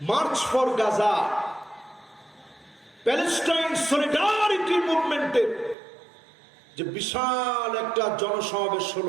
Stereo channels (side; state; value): left; drops out; at 5.8 s